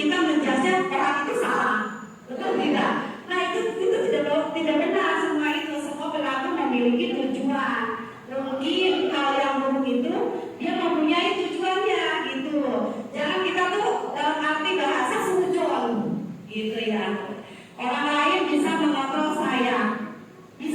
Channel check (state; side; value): identical; both; correlation 1.00